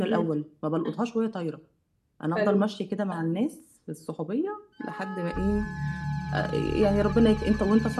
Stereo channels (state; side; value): identical; both; correlation 1.00